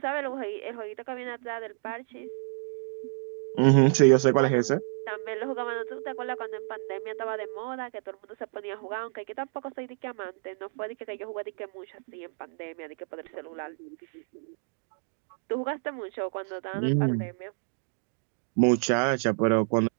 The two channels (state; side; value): silent; left; digital silence